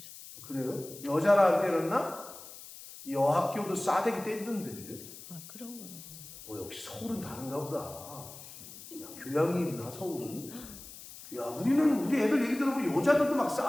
그래요? 여자를 안 때렸나? 여학교도 싸대기 때리던데. 아 그런 건 없었어. 역시 서울은 다른가 보다. 야, 교양이 있나 서울은? 야 우리는 우리 애들 얘기 들어보면 여자들도 막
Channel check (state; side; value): noise; left; hiss, 15 dB below the sound